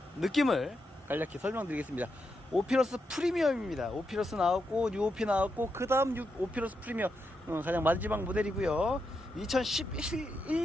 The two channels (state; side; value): normal; both; correlation 0.84